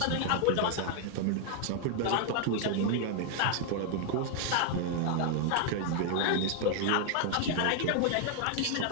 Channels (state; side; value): different; both; correlation 0.00